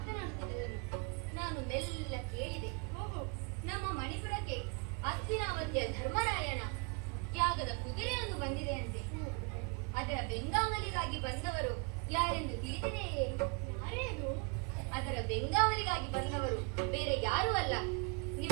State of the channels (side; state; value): left; quieter; 33.9 dB